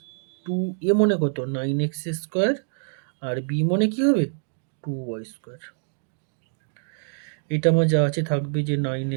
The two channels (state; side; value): silent; left; digital silence